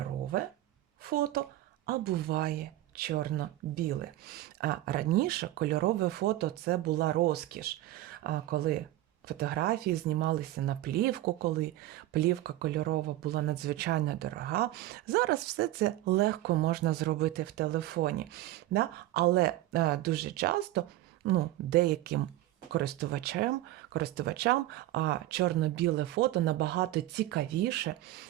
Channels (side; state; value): left; quieter; 15.3 dB